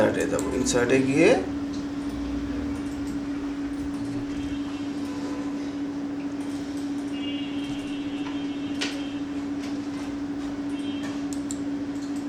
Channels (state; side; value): identical; both; correlation 1.00